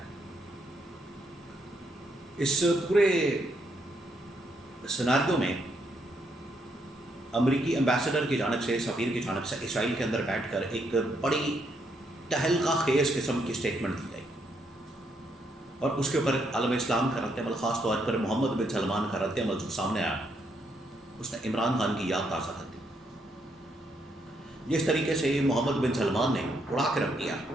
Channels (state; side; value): normal; both; correlation 0.75